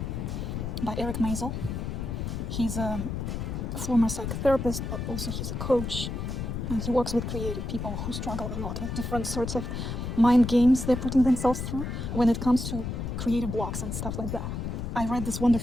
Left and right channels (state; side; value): noise; left; rumble, 4 dB below the sound